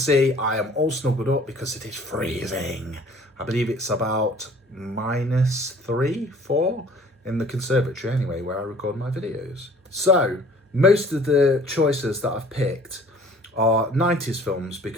I am all snuggled up because it is freezing. I believe it's about -3, 4 in the conservatory anyway, where I record my videos. So, most of the choices that I've picked are 90s films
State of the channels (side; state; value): both; normal; correlation 0.51